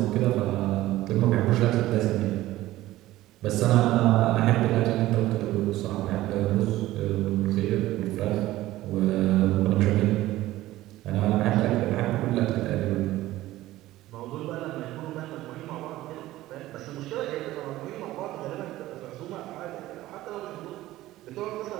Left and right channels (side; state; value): left; quieter; 16.1 dB